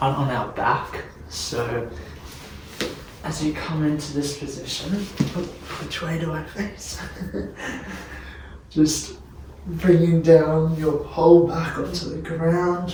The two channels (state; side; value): identical; both; correlation 1.00